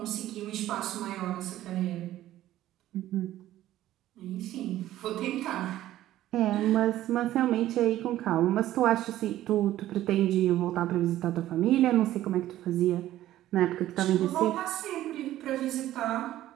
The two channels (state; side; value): quieter; left; 13.9 dB